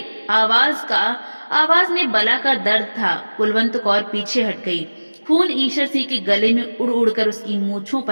आवाज में बला का दर्द था। कुलवंत कौर पीछे हट गई। खून ईश्वर सिंह के गले में उड़ उड़ कर उसकी मूछों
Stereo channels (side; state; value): both; inverted; correlation -1.00